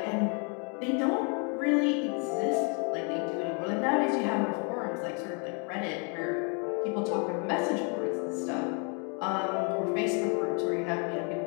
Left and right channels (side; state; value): right; quieter; 36.9 dB